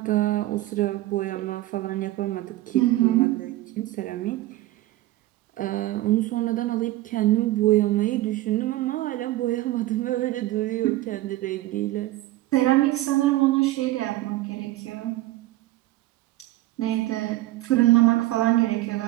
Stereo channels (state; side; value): quieter; left; 16.7 dB